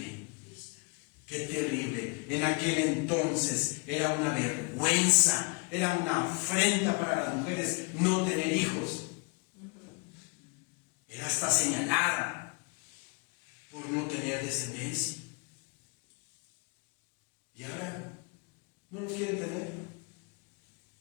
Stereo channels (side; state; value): right; quieter; 31.1 dB